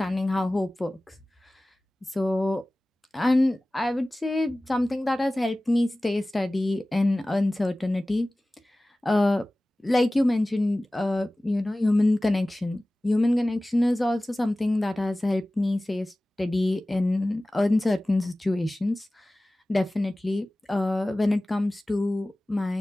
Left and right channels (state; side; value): normal; both; correlation 0.98